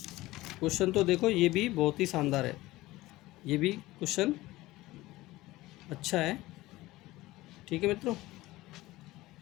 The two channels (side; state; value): right; quieter; 18.4 dB